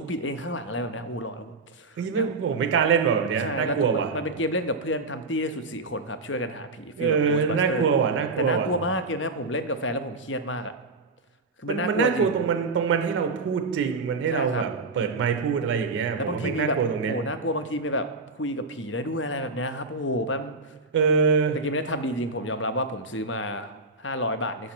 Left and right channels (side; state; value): left; quieter; 3.6 dB